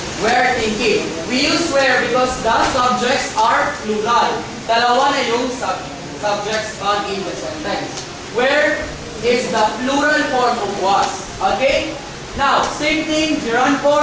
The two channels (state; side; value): identical; both; correlation 1.00